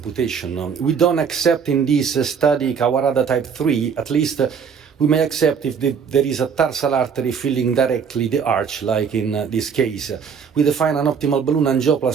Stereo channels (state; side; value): quieter; left; 6.6 dB